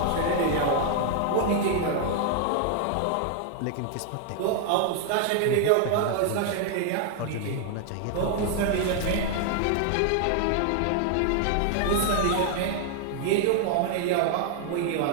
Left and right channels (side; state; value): both; different; correlation 0.00